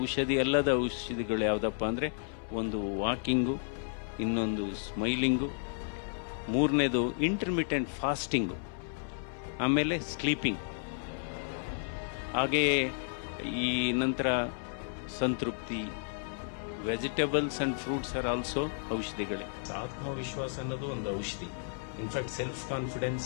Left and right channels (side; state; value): right; silent; 56 dB below the other